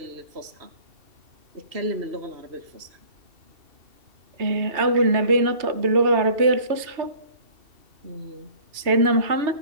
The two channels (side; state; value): left; late; 2.7 ms